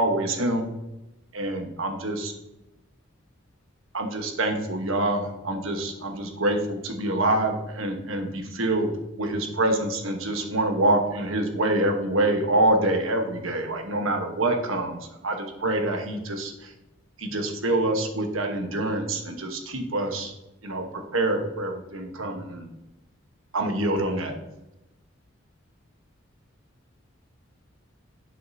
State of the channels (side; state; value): both; normal; correlation -0.06